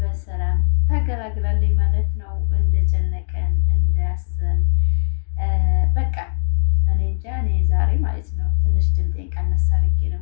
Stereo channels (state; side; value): silent; right; digital silence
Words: ተገላግላለች ማለት ነው። እንደጨነቀን እንዳያሰን በቃ እኔ እንጃ። እኔ ዛሬ ማለት ነው ትንሽ ድምጤን ቀነስ አድርጌ ነው